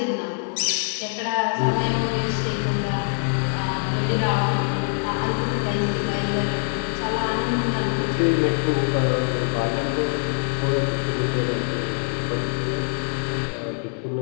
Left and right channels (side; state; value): right; silent; digital silence